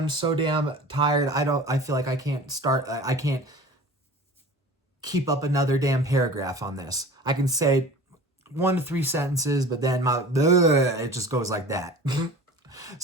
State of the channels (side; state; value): both; normal; correlation 0.40